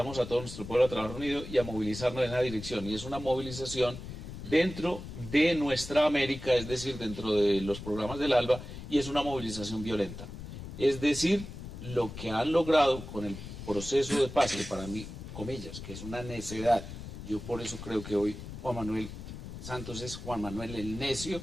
a todo nuestro pueblo a trabajar unido y a movilizarnos en esa dirección. Y es una movilización dentro de nuestra América, es decir, dentro de los programas del ALBA, y es una movilización violenta. Es decir, lo que han logrado con el proceso de paz, que para mí, comillas, que es una necedad, yo por eso creo que hoy Juan Manuel Santos es Juan Manuel el necio,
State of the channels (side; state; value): left; noise; rumble, 10 dB below the sound